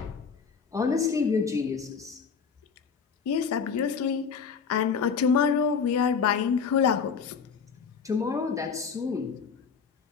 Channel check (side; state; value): right; quieter; 6.0 dB